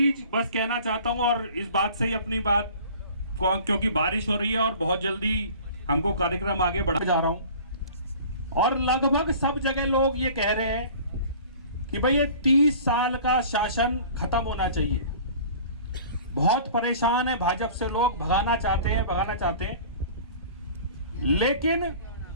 बस कहना चाहता हूं और इस बात से ही अपनी बात, क्योंकि बारिश हो रही है और बहुत जल्दी हमको कार्यक्रम आगे बढ़ा जा रहा हूं और लगभग सब जगह लोग ये कह रहे हैं कि भाई ये 30 साल का शासन खत्म होना चाहिए. बहुत परेशान है भाजपा से लोग, भगाना चाहते हैं, लेकिन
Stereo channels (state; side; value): inverted; both; correlation -0.45